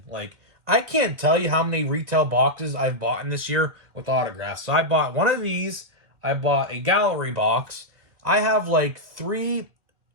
Like, I can't tell you how many retail boxes I've bought in this year with autographs. So I bought one of these. I bought a gallery box. I have like 3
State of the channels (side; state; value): left; late; 2.1 ms